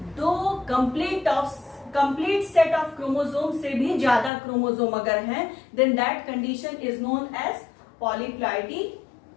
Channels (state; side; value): drops out; right; at 4.3 s